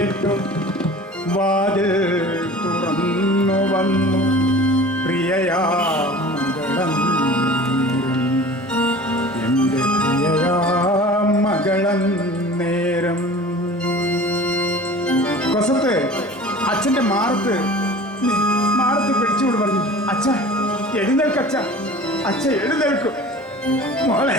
വാതിൽ തുറന്നു വന്നു പ്രിയയാ മംഗളം, എൻ്റെ പ്രിയയാ നേരം കൊസത്ത് അച്ഛന്റെ മാറത്ത് പിടിച്ചുകൊണ്ട് പറഞ്ഞു, അച്ഛ എഴുന്നേൽക്കച്ഛ, അച്ഛ എഴുന്നേൽക്കും.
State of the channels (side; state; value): both; normal; correlation 0.41